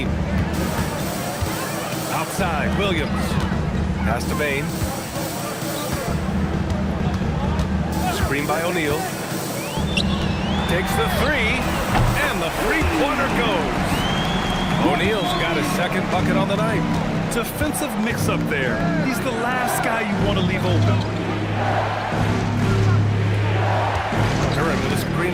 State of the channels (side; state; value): both; identical; correlation 1.00